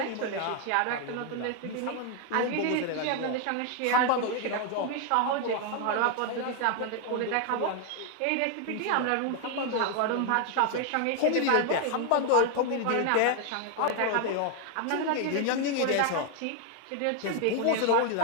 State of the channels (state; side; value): different; both; correlation 0.00